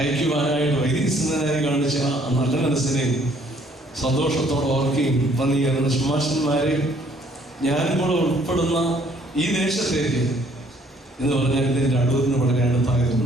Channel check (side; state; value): both; normal; correlation 0.62